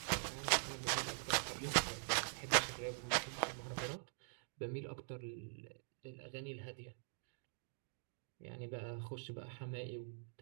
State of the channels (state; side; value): silent; left; digital silence